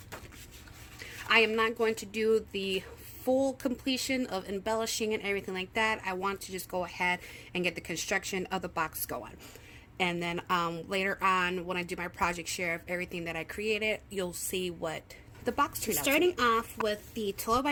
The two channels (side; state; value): both; identical; correlation 1.00